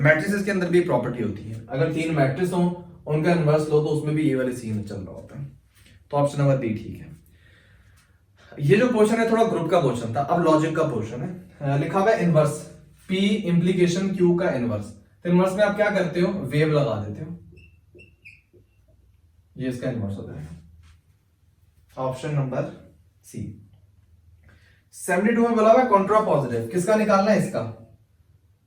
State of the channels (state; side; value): identical; both; correlation 1.00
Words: के अंदर भी प्रॉपर्टी होती है, अगर 3 मैट्रिक्स हो उनका इनवर्स लो तो उसमें भी ये वाले सीन चल रहा होता है। तो ऑप्शन नंबर बी ठीक है। ये जो क्वेश्चन है थोड़ा ग्रुप का क्वेश्चन था, अब लॉजिक का क्वेश्चन है। लिखा हुआ है इनवर्स P इंप्लीकेशन Q का इनवर्स। तो इनवर्स में आप क्या करते हो, वेव लगा देते हो, ये इसका इनवर्स होता है। ऑप्शन नंबर सी। 72 में बोला हुआ है कॉन्ट्रा पॉजिटिव, किसका निकालना है, इसका